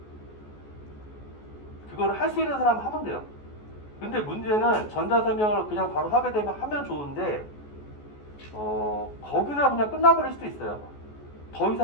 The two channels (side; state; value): right; late; 14 ms